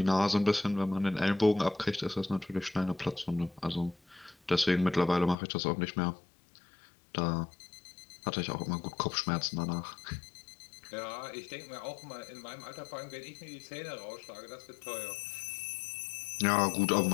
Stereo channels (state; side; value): drops out; right; at 5.4 s